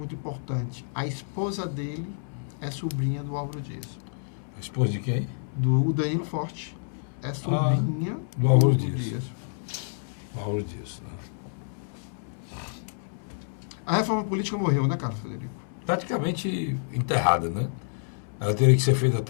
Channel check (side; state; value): right; silent; 59 dB below the other